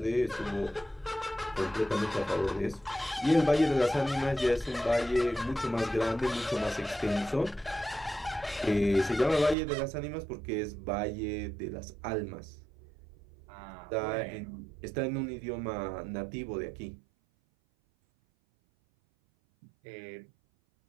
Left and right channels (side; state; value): left; drops out; at 9.6 s